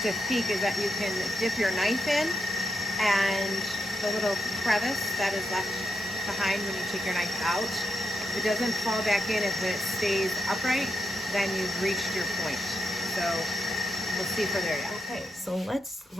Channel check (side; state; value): both; normal; correlation 0.84